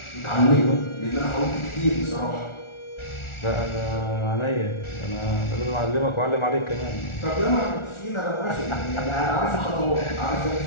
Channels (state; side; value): late; right; 1.4 ms